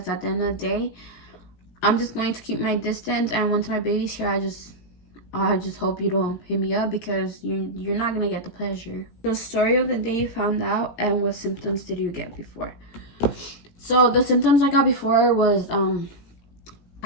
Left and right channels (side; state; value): right; late; 18 ms